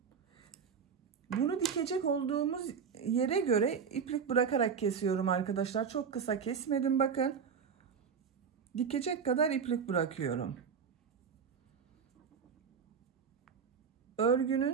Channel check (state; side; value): quieter; left; 6.5 dB